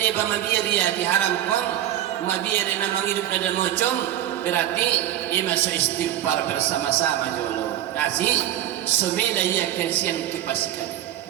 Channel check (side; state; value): left; quieter; 12.2 dB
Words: ba mabiya dia diharam kon mabiya na mangidup na mocom berarti ima so istighfar bersama-sama jolo kasih sumila ya kensian kipasikan